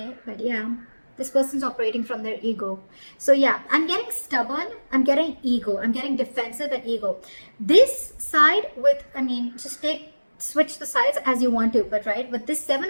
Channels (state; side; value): inverted; both; correlation -1.00